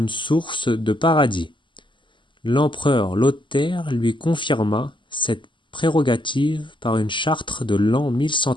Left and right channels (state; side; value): late; right; 0.24 ms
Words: source de paradis. L'empereur Lothaire lui confirma cette prérogative par une charte de l'an